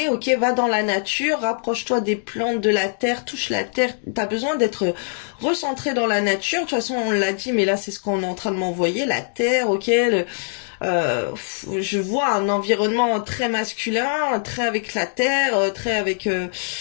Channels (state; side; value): silent; right; digital silence